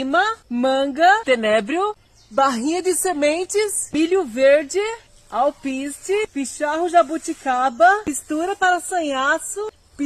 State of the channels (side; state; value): both; identical; correlation 1.00